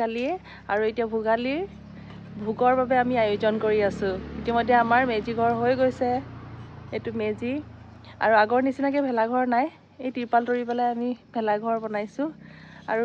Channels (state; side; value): identical; both; correlation 1.00